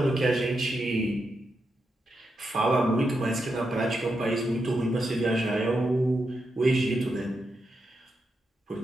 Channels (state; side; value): normal; both; correlation 0.85